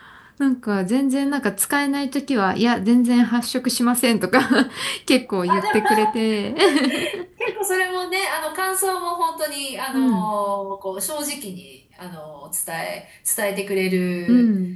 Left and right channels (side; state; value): both; identical; correlation 1.00